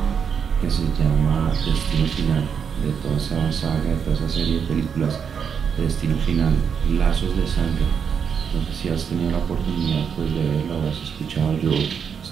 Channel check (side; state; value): left; quieter; 7.0 dB